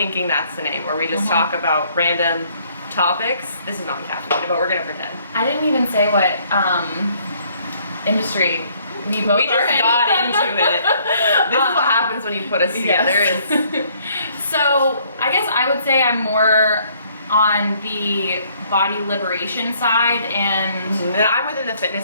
that's the name, where we just talk about random topics. This is not caffeine, but we're gonna pretend. I didn't even say what industry we both just got into it. This is what happens when you put us together. So I guess I would say I'm more on the body liberation side, and I'm within the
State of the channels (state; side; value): inverted; both; correlation -0.64